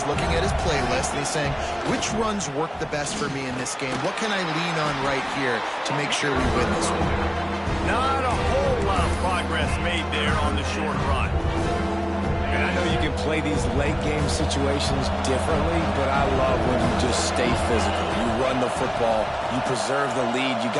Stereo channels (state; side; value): identical; both; correlation 1.00